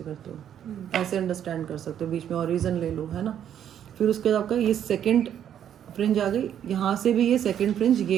करते हो, ऐसे अंडरस्टैंड कर सकते हो. बीच में ऑरिजन ले लो, है ना. फिर उसके बाद आपका ये सेकेंड फ्रिंज आ गई. यहाँ से भी ये सेकेंड फ्रिंज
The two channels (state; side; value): quieter; left; 9.7 dB